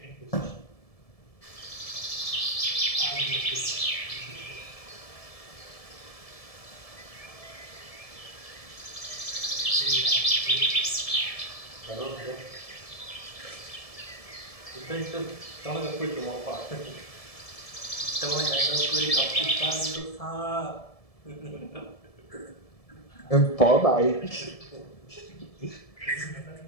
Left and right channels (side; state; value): right; late; 1.7 ms